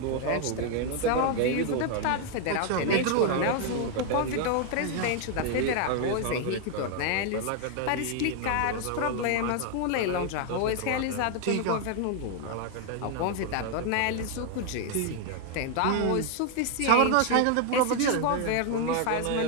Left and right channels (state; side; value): different; both; correlation 0.00